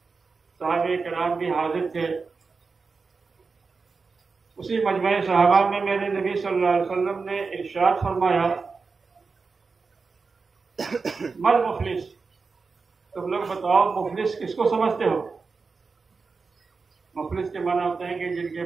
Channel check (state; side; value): quieter; left; 4.6 dB